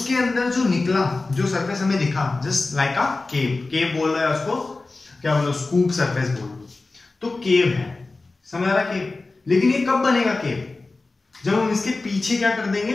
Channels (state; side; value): quieter; right; 3.4 dB